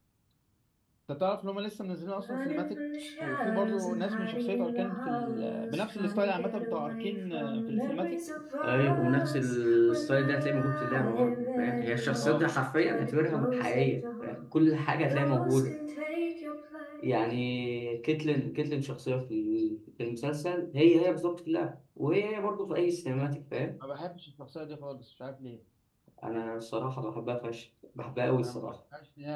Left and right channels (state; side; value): identical; both; correlation 1.00